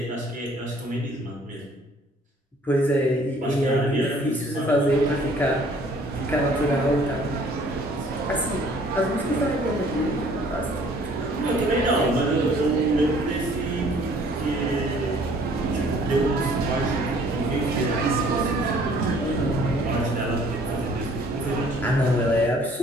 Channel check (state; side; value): normal; both; correlation 0.57